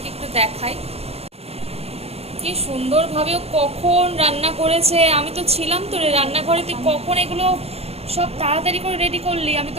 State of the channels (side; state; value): left; late; 0.29 ms